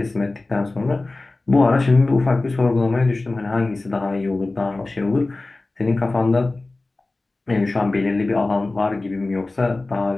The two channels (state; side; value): quieter; right; 3.1 dB